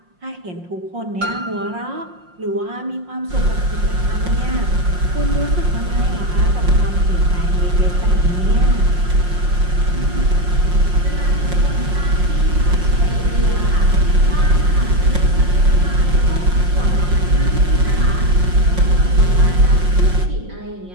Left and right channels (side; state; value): left; late; 5.6 ms